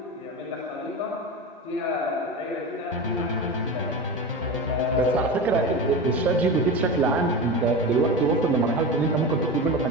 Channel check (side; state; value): both; normal; correlation 0.25